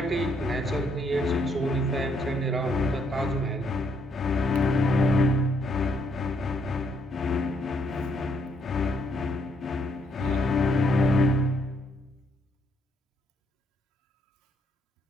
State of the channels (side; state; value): both; normal; correlation 0.72